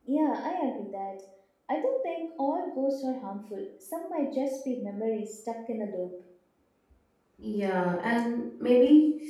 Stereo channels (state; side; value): identical; both; correlation 1.00